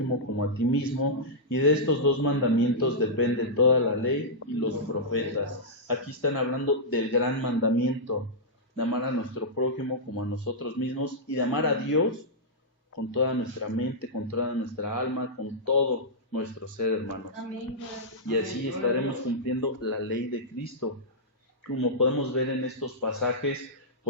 como a ti mismo, y de estos dos mandamientos depende toda la ley y los profetas. Aquí están hablando del gran mandamiento, de amar a nuestro prójimo como a nosotros mismos, y de amar a Dios con toda nuestra mente, con toda nuestra alma, con todo nuestro ser, hermanos. Amén. Y así estaremos cumpliendo la ley de Cristo. Como podemos ver en estos pasajes,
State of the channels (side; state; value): both; normal; correlation -0.11